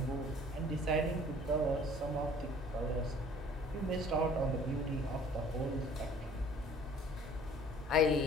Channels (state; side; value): normal; both; correlation 0.52